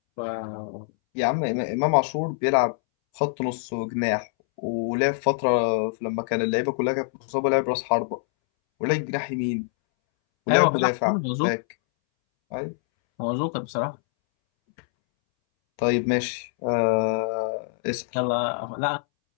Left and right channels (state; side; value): silent; right; 62 dB below the other